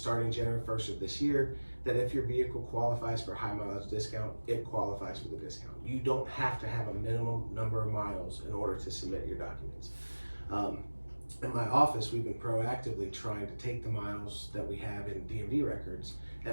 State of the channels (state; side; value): inverted; both; correlation -1.00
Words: January 1st of this year that if your vehicle qualifies for high mileage discount, it qualifies for the discount. You don't have to have a minimum number of miles in order to submit your documents. In my office, we've been proactively trying to take the miles that we have in DMV records